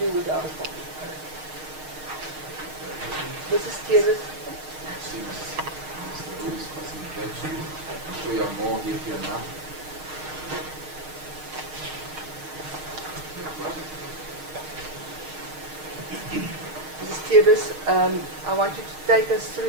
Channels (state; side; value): late; left; 6.5 ms